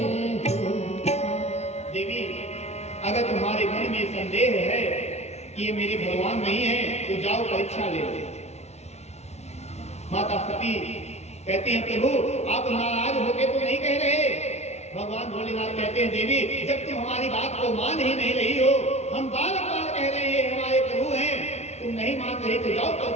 देवी अगर तुम्हारे मन में संदेह है कि ये मेरे भगवान नहीं है तो जाओ परीक्षा ले लो। माता सती कहती हैं प्रभु आप नाराज होके तो नहीं कह रहे? भगवान भोलेनाथ कहते हैं देवी जब तुम हमारी बात को मान ही नहीं रही हो, हम बार बार कह रहे हैं हमारे तुम नहीं मान रहे तो जाओ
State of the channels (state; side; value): late; right; 0.32 ms